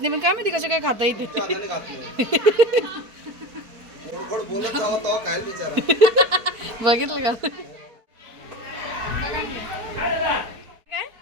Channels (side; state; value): left; late; 4.5 ms